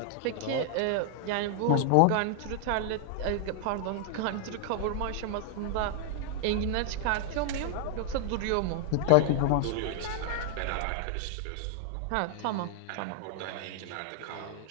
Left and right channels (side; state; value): both; different; correlation 0.00